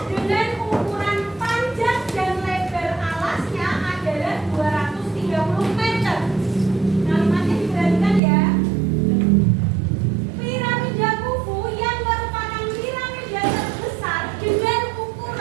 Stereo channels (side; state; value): left; drops out; at 8.2 s